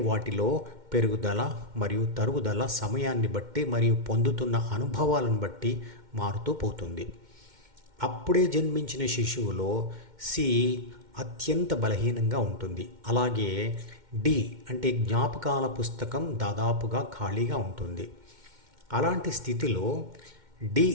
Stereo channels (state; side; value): late; left; 2.1 ms